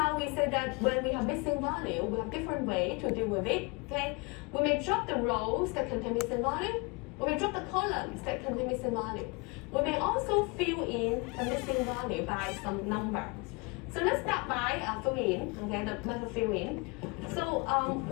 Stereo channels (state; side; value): quieter; right; 29.6 dB